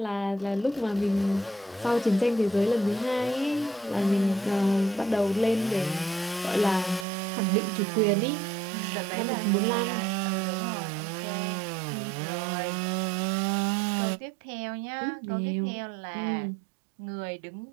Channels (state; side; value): drops out; left; at 7.1 s